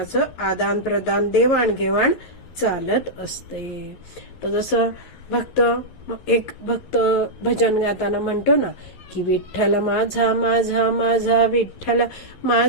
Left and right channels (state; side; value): late; right; 11 ms